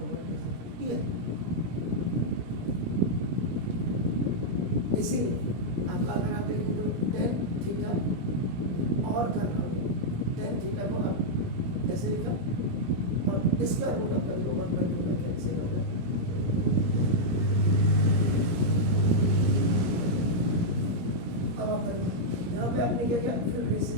1 ये। इसीलिए आपका अगर आप देखें तो tan थीटा और करना होगा, tan थीटा को आप ऐसे लिखा और इसका रूट आपका 1/2 में कैंसिल हो गया। अब आप यहाँ पे आपने क्या किया, फिर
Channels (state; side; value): late; left; 17 ms